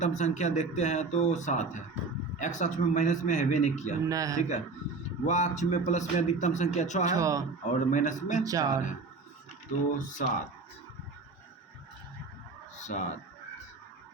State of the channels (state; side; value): quieter; left; 4.0 dB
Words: संख्या देखते हैं तो 7 है, एक्स अक्ष में माइनस में हैवे नहीं किया, ठीक है। वह अक्ष में प्लस में अधिकतम संख्या 6 है और माइनस में 4 है, तो 7